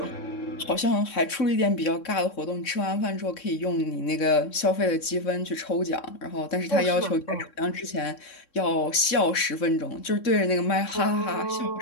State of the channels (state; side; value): late; right; 3.6 ms